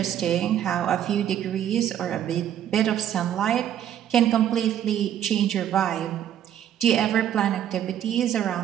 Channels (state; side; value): quieter; left; 10.5 dB